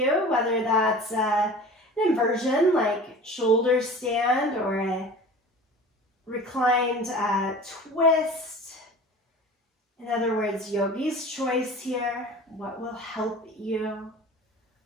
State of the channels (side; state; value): both; normal; correlation 0.39